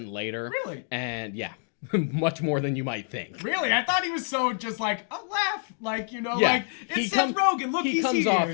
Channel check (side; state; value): right; silent; 60 dB below the other